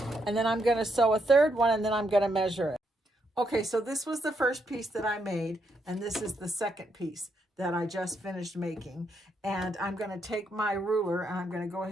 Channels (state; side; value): normal; both; correlation 0.78